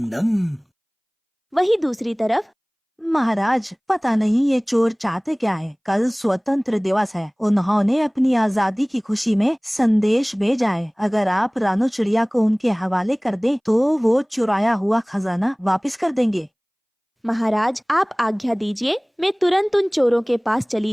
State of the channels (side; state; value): both; identical; correlation 1.00